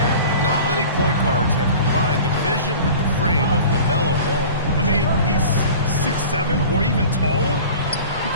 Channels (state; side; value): inverted; both; correlation -0.40